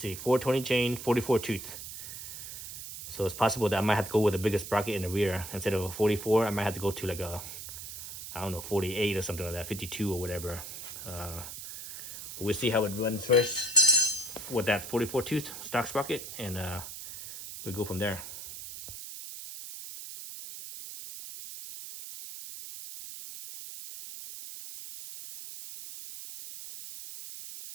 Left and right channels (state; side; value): noise; right; hiss, 10 dB below the sound